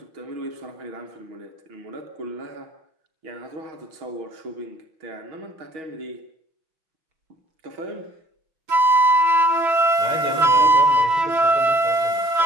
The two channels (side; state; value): left; late; 6.1 ms